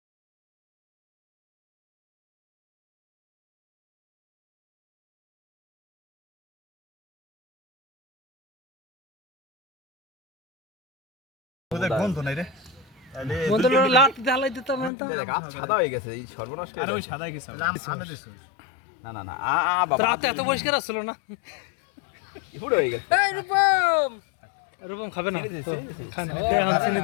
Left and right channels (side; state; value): right; drops out; at 14.9 s